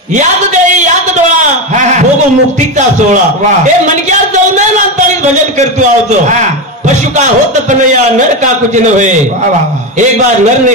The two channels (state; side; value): normal; both; correlation 0.15